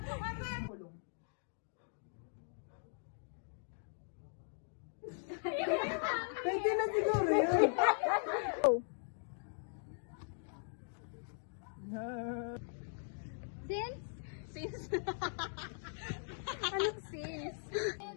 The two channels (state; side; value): silent; right; digital silence